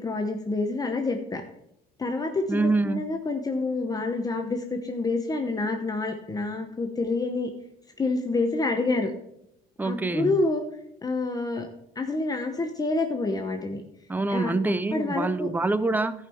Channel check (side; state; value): both; normal; correlation 0.72